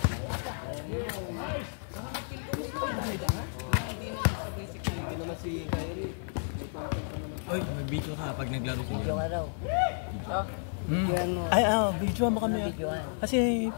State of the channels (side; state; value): right; silent; 57 dB below the other